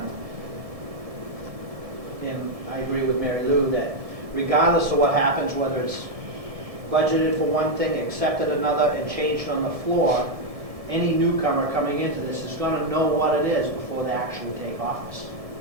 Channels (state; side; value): late; left; 1.7 ms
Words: And I agree with Mary Lou that regardless of what happens, whether it's budgeted for one thing, accepted another, and changed on the floor, any newcomer coming into this is going to know what it is before they actually take office.